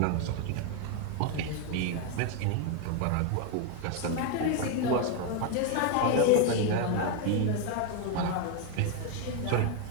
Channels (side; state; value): both; different; correlation 0.01